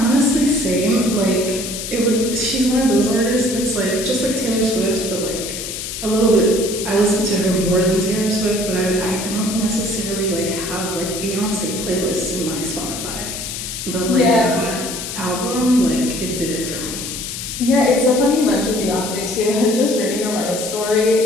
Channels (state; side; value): noise; left; hiss, 6 dB below the sound